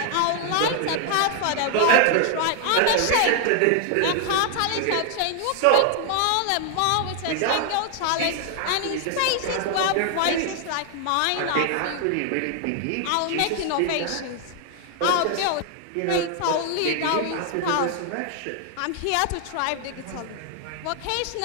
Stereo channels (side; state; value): both; different; correlation 0.00